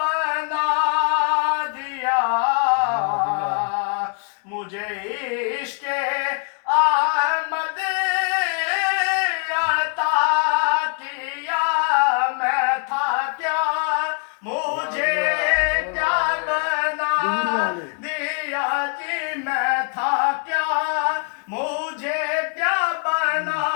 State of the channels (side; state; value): right; quieter; 39.0 dB